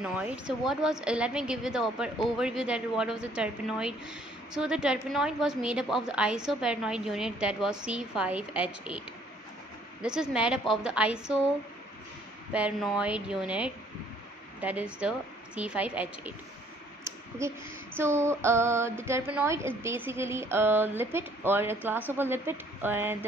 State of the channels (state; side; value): normal; both; correlation 0.61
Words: So let me give you the overview that what was the terpenoid. So the terpenoid was made up of the isopernoid unit that was C5H8. This is made up of the isopernoid unit that is the C5H8. Okay, so the terpenoid is basically a lipid or a class of a lipid, and